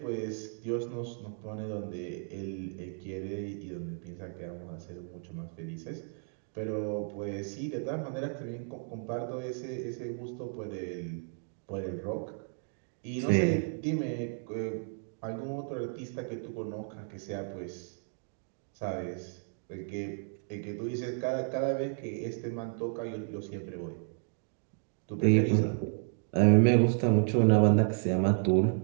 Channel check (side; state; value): left; silent; 56 dB below the other